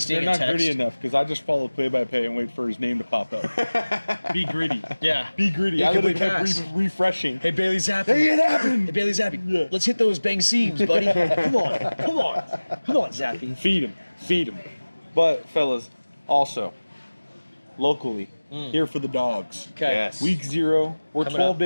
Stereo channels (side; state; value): both; inverted; correlation -1.00